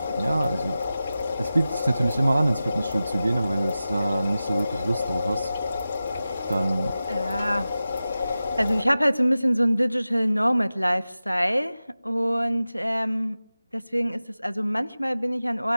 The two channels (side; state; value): both; inverted; correlation -0.94